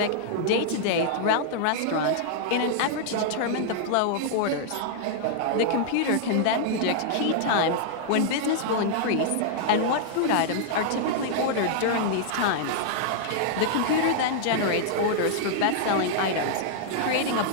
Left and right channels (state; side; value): different; both; correlation -0.01